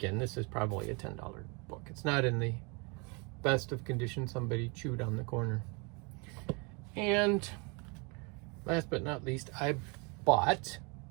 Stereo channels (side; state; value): left; quieter; 31.5 dB